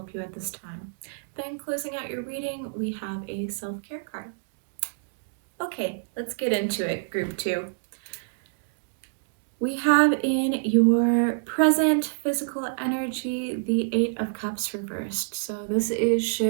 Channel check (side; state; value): left; silent; digital silence